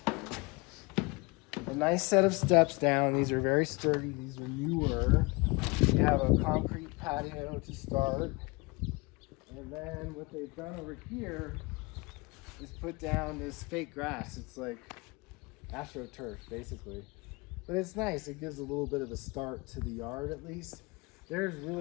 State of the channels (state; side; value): quieter; right; 26.6 dB